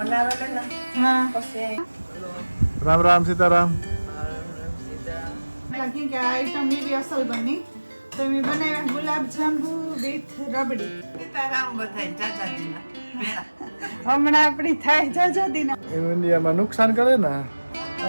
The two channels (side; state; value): both; inverted; correlation -1.00